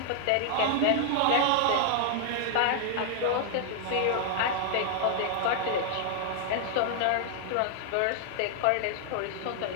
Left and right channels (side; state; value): both; different; correlation -0.01